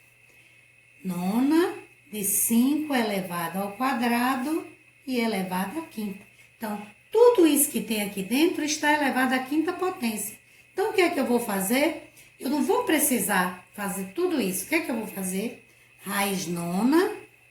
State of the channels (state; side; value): identical; both; correlation 1.00